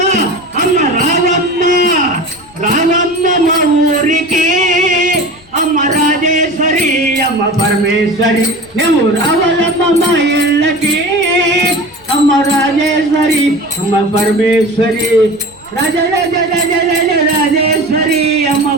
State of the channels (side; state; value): left; noise; rumble, 28 dB below the sound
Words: అమ్మ రావమ్మ రావమ్మ మా ఊరికి అమ్మ రాజేశ్వరి అమ్మ పరమేశ్వరి నువ్వు రావాలమ్మ మా ఇళ్ళకి అమ్మ రాజేశ్వరి అమ్మ పరమేశ్వరి రాజ రాజ రాజ రాజ రాజేశ్వరి అమ్మ